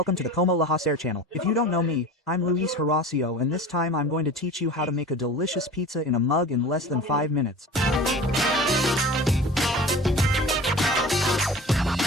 to the Como La Hacer channel. If you don't know me, I'm Luis Horacio and this time I'm going to teach you how to make a delicious pizza in a mug in less than 5 minutes.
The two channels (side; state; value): both; normal; correlation 0.38